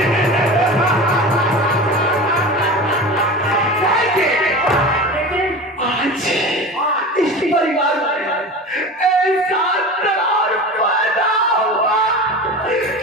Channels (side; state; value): both; normal; correlation 0.31